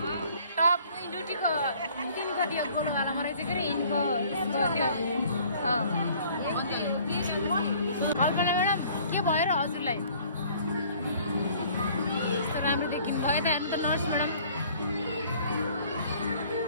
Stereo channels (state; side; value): inverted; both; correlation -0.54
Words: टप ड्युटीको तिनको त्यो कोलोवालामा रहेछ के अरे यिनको त्यो कल्पना म्याडम के भयो र हजुरलाई? यस्तो राम्रो देखिनु भयो त। हेर्नु त नर्स म्याडम।